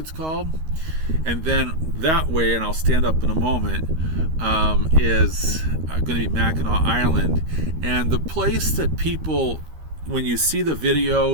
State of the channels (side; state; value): left; late; 13 ms